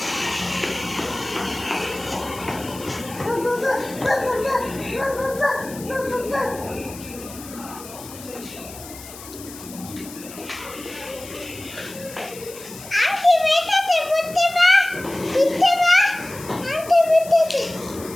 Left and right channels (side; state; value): left; noise; hiss, 15 dB below the sound